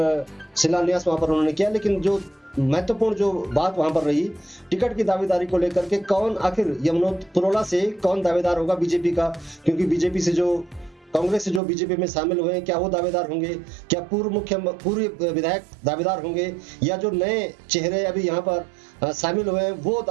शिलान्यास वहां पर उन्होंने किया। लेकिन जो महत्वपूर्ण जो बात वहां पर रही, टिकट की दावेदारी को लेकर के, कौन आखिर पुरोला से कौन दावेदार होगा बीजेपी का, क्योंकि बीजेपी से जो कांग्रेस से जो बीजेपी में शामिल हुए हैं, क्या वो दावेदार होंगे, क्या पूर्व विधायक दावेदार होंगे, या जो नए चेहरे अभी यहाँ पर शामिल हुए हैं वो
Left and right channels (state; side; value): drops out; left; at 11.6 s